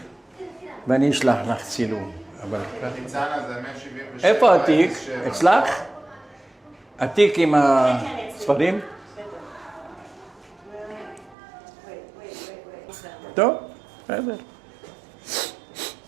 ואני אשלח לך צילום. אבל... ניצנה זה 177. איפה התיק? אצלך? התיק עם הספרים? טוב, בסדר.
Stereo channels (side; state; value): left; drops out; at 11.4 s